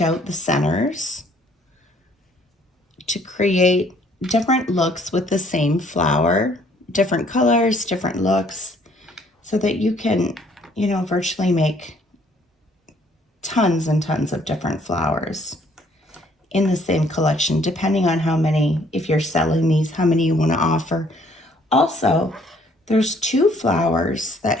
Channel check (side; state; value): both; normal; correlation 0.62